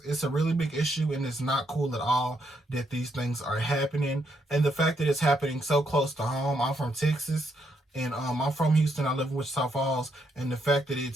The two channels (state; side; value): normal; both; correlation 0.76